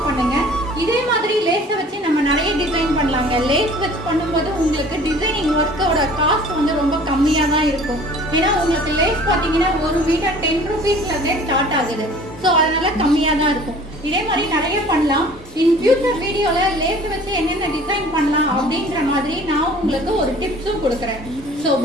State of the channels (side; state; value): both; normal; correlation 0.48